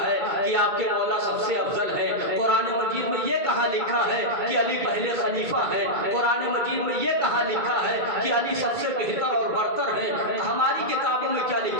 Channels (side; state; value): left; late; 2.2 ms